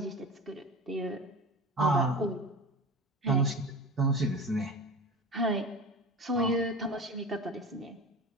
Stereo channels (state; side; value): normal; both; correlation 0.31